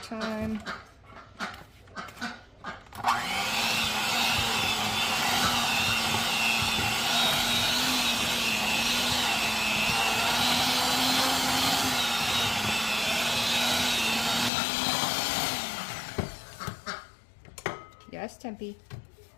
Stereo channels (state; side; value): drops out; right; at 14.5 s